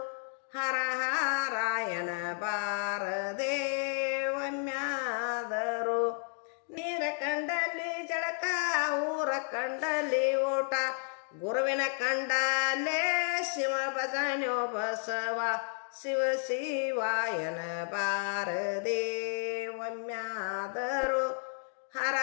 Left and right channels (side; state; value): right; silent; 56 dB below the other